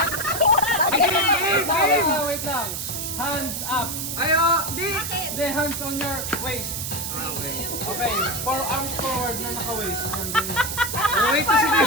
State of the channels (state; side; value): noise; right; hiss, 4 dB below the sound